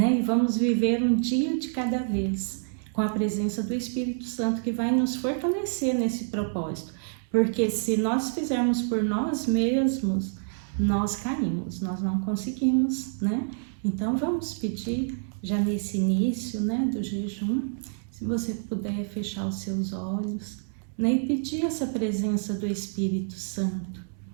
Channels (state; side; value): silent; left; digital silence